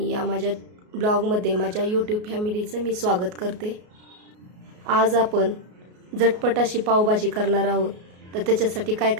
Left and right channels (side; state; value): left; late; 33 ms